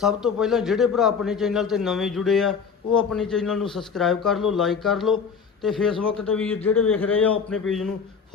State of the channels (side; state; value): right; quieter; 6.1 dB